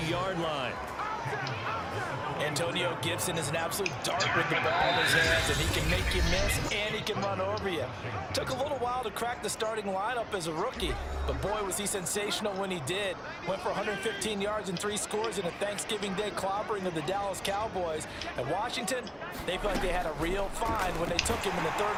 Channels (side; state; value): both; identical; correlation 1.00